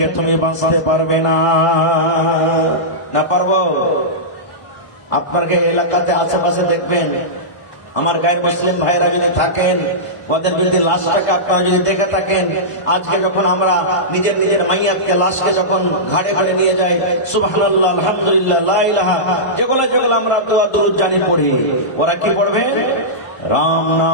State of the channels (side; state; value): right; late; 1.5 ms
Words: তুমি বাঁচতে পারবে না। না পারবো? আপনাকে এলাকাতে আশেপাশে দেখবেন, আমার গায়ের মুসলিম ভাইরা যদি থাকেন, ওদের যদি লাশটাকে আপনারা যদি দেখে থাকেন, আজকে যখন আমরা নিজের নিজের মাইয়াতকে, লাশকে যখন ঘাড়ে ঘাড়ে নিয়ে যাই, সুবহানাল্লাহ, আলহামদুলিল্লাহ, লা ইলাহা, যেগুলো যেগুলো আমরা দোয়া দুরূদ জানি পড়ি, ওরা কি পড়বে? राम